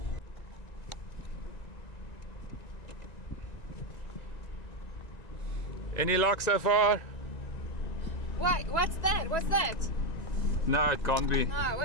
Any luck so far? Wait, what's that? What's that? No, it can't be. No,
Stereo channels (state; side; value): late; right; 1.9 ms